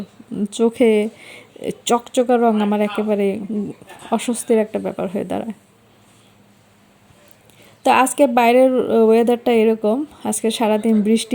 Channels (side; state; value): both; identical; correlation 1.00